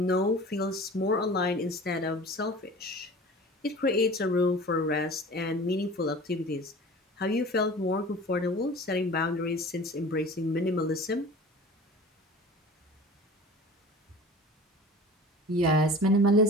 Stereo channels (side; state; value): both; normal; correlation 0.40